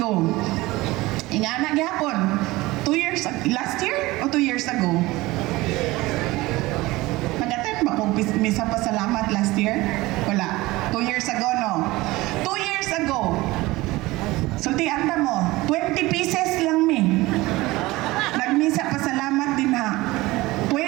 ingana gyapon, 2 years, last year o 2 years ago? Nag-attend ba kung misa pa salamat last year? Wala. 2 years ago, no? 2 years ago, sultian ta mo, 20 pieces lang mi. Nagmisa pa salamat din ha.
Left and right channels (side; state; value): left; quieter; 19.9 dB